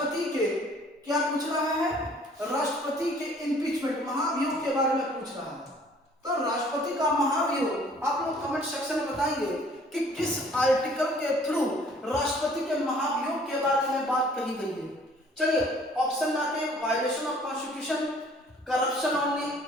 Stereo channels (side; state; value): both; normal; correlation 0.55